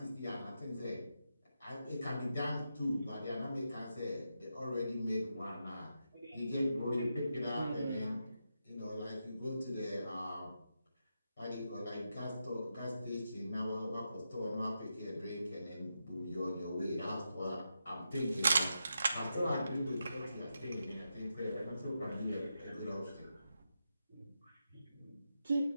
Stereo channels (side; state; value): both; inverted; correlation -0.86